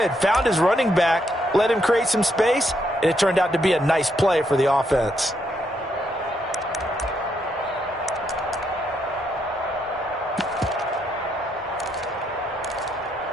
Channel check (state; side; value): normal; both; correlation 0.77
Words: Found his running back, let him create some space, and it turned out to be a nice play for the offense.